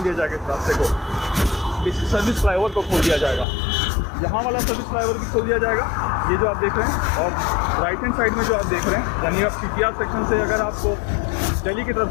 दिया जाएगा इस रास्ते को, इस सर्विस फ्लाईओवर को खोल दिया जाएगा। यहाँ वाला सर्विस फ्लाईओवर भी खोल दिया जाएगा, ये जो आप देख रहे हैं। और राइट हैंड साइड में जो आप देख रहे हैं, यानी आप CPR सेक्शन से अगर आपको दिल्ली की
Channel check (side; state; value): right; drops out; at 3.5 s